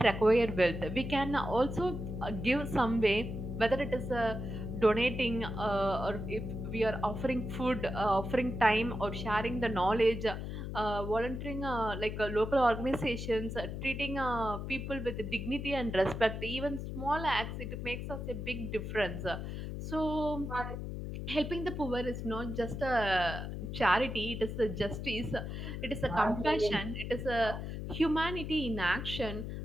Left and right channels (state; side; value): noise; left; hum, 6 dB below the sound